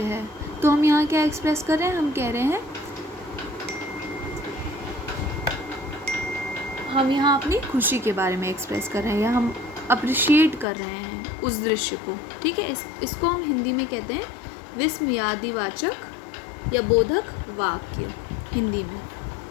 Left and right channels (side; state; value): right; drops out; at 10.7 s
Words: है. तो हम यहाँ क्या एक्सप्रेस कर रहे हैं? हम कह रहे हैं, हम यहाँ अपनी खुशी के बारे में एक्सप्रेस कर रहे हैं या हम अप्रिशिएट कर रहे हैं उस दृश्य को, ठीक है. इसको हम हिंदी में कहते हैं विस्मयादिवाचक या बोधक वाक्य हिंदी में.